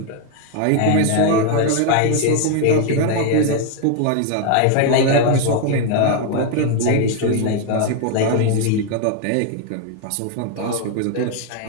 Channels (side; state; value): both; different; correlation 0.01